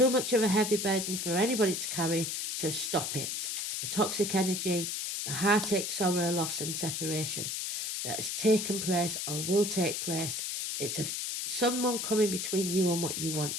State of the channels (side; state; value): left; noise; hiss, 2 dB below the sound